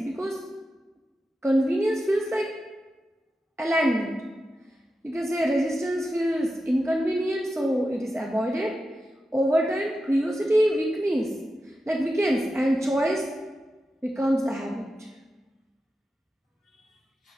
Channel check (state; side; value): normal; both; correlation 0.91